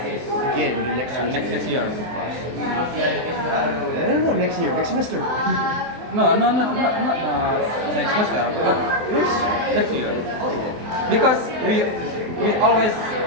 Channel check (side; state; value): left; late; 24 ms